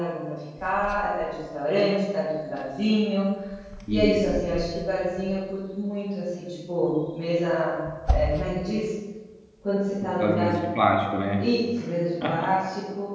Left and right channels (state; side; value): identical; both; correlation 1.00